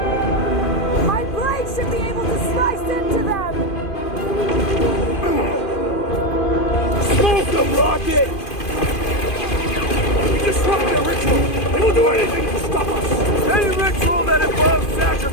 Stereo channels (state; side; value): late; right; 2.5 ms